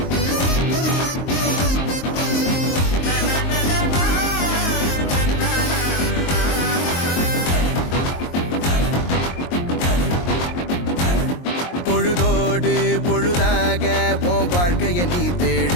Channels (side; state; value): right; late; 23 ms